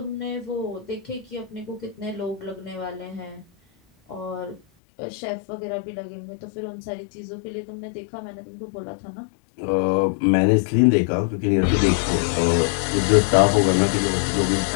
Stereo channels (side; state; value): right; drops out; at 4.6 s